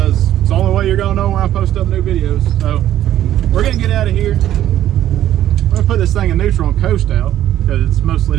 it's the only way you're gonna know when I post up new videos. So we're gonna get out of here. I'm gonna put this thing in neutral and coast out because it's mostly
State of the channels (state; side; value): quieter; left; 12.3 dB